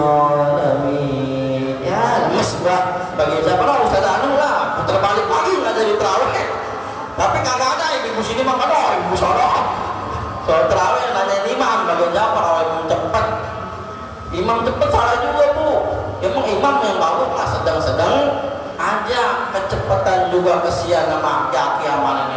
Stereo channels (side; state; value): both; identical; correlation 1.00